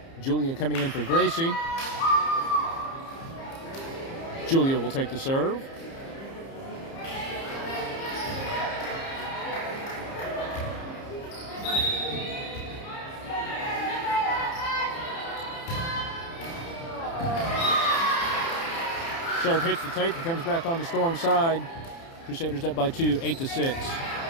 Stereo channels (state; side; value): late; right; 30 ms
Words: Julia coming in for Gracie. Julia will take the serve. Serve hits the tape and comes back on the Storm side. Crusaders up by 2, 8-6.